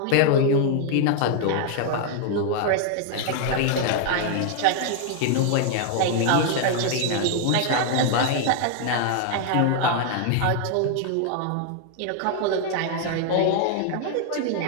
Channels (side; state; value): both; different; correlation 0.00